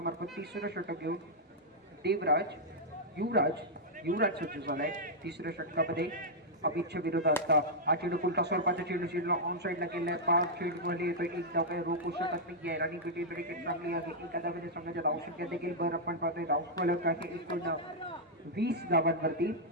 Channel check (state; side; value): normal; both; correlation -0.07